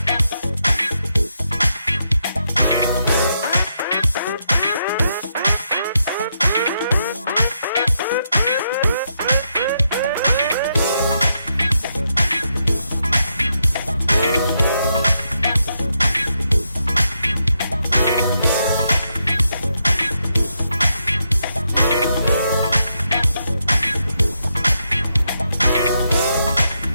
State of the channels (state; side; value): inverted; both; correlation -0.81